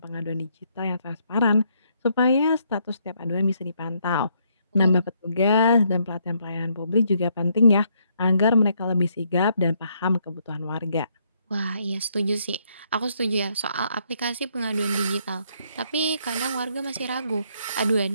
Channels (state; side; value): inverted; both; correlation -0.72